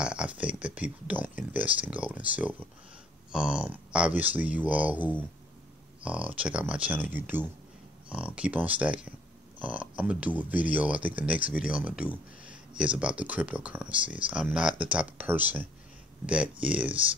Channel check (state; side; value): normal; both; correlation 0.61